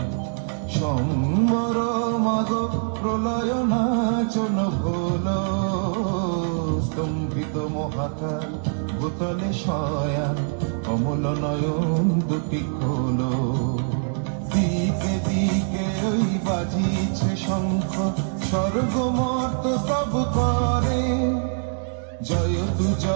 সম্বর মাগ প্রলয় নাচন হলো, স্তম্ভিত মহাকাল ভূতলে শয়া, কমল নয়ন দুটি খোলো। দিকে দিকে ওই বাজিছে শঙ্খ, স্বর্গ মর্ত স্তব করে, জয়তু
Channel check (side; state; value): left; silent; 63 dB below the other